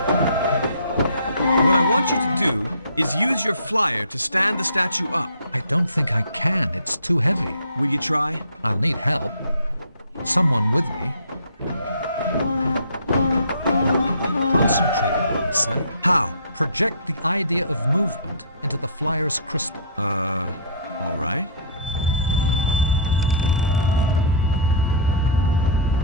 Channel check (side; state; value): both; inverted; correlation -0.45